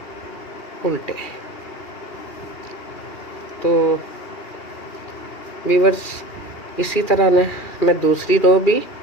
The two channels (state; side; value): late; right; 2.4 ms